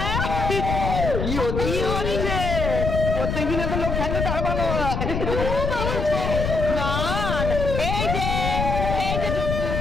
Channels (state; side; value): noise; left; rumble, 2 dB below the sound